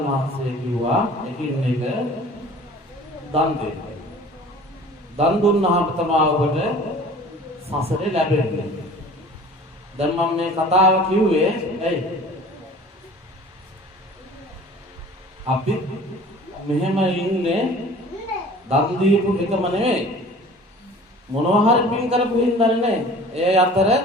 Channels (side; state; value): both; normal; correlation 0.45